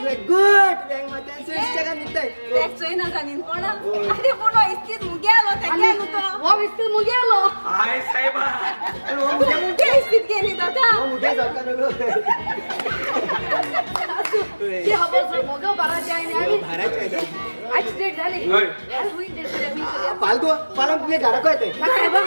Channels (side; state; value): both; inverted; correlation -1.00